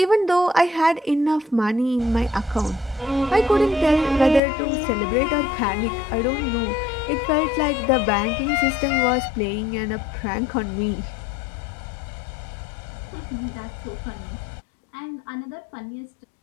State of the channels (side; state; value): right; drops out; at 4.4 s